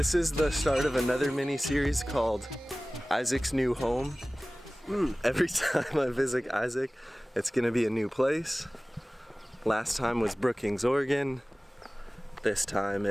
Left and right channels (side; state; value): both; normal; correlation 0.98